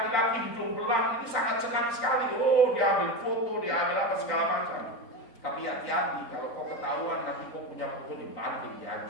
hidung belang itu sangat senang sekali. Oh, dia ambil foto, dia ambil apa segala macam. Tapi hati-hati, kalau kau ketahuan nanti kau punya foto dibanting,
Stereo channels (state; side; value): late; right; 3.9 ms